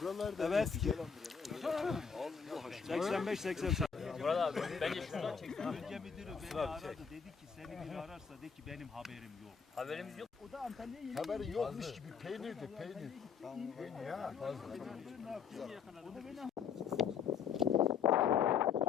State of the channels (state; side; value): quieter; right; 6.5 dB